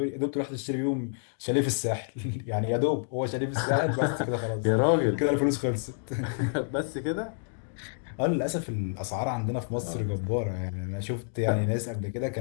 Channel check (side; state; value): right; silent; digital silence